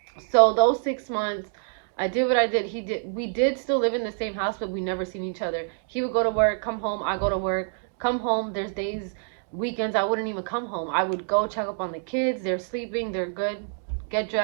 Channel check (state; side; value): silent; left; digital silence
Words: So those 6 months, I did what I did. We did still live in the same house, but we never seen each other. He would go to work, come home, I go to work, come home. There's days, weekends, I wouldn't even come home. I would go check up on the kids. They're sleeping, they're good, get